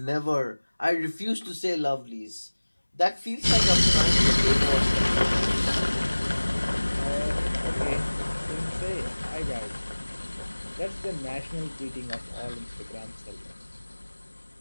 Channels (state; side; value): inverted; both; correlation -1.00